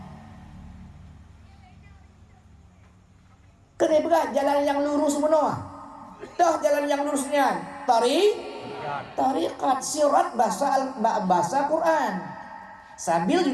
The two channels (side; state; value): both; identical; correlation 1.00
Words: Kena berat jalan yang lurus menua. Dah jalan yang lurusnya tariqat sirat bahasa Quran. Sabil